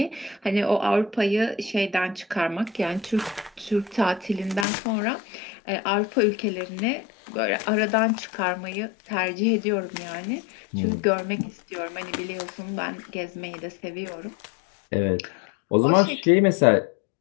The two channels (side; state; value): right; drops out; at 4.7 s